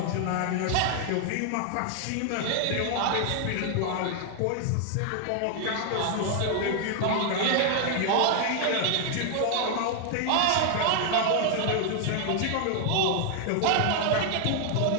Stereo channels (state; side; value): different; both; correlation 0.00